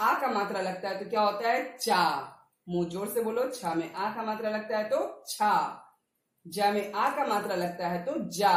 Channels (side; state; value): both; identical; correlation 1.00